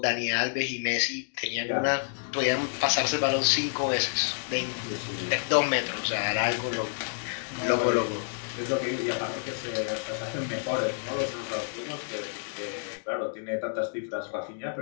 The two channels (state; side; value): silent; right; digital silence